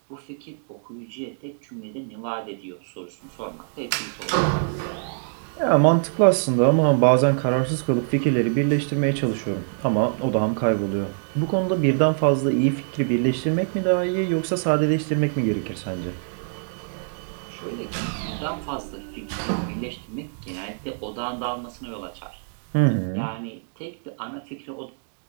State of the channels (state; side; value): silent; left; digital silence